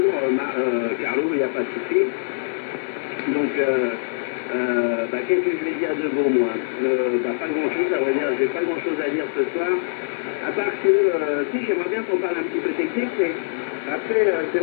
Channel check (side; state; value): right; silent; 55 dB below the other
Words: Carlo, il n'y a pas de souci. Donc, qu'est-ce que je vais dire de bon, moi? Pas grand-chose, à vrai dire, j'ai pas grand-chose à dire ce soir, à part que, si, j'aimerais bien qu'on parle un petit peu technique, mais après, c'est